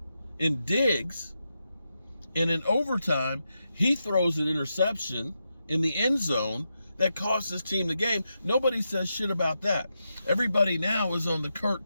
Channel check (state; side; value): inverted; both; correlation -0.86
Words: in Diggs, and in overtime, he throws an interception in the end zone that cost his team the game. Nobody says shit about that. Everybody now is on the Kirk